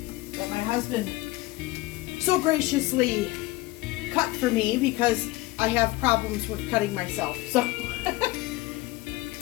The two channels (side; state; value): right; quieter; 19.4 dB